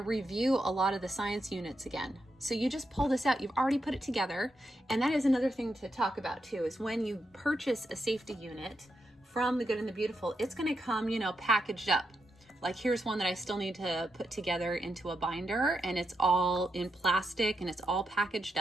a lot of the science units again. So you just pull this out, you've already put it together. And that is another thing to talk about too, is when you purchase a safety unit from The Good and the Beautiful, it's going to come, packaged up. Like here's one that I still need to put together into a binder, and it's all in plastic and it's all packaged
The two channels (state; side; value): normal; both; correlation 0.84